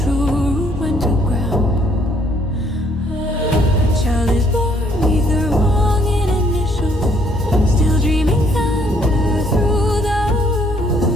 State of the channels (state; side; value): normal; both; correlation 0.66